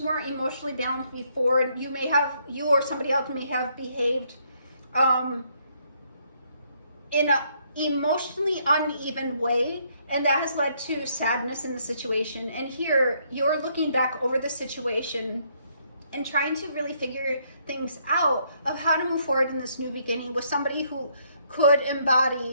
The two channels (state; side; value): inverted; both; correlation -0.70